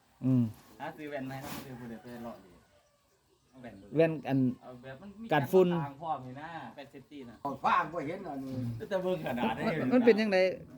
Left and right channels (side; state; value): both; identical; correlation 1.00